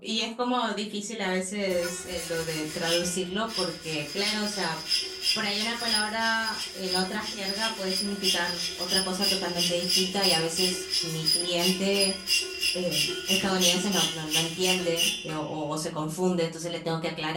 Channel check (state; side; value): identical; both; correlation 1.00